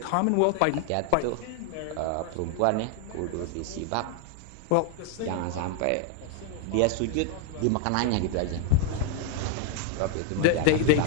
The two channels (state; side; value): different; both; correlation 0.01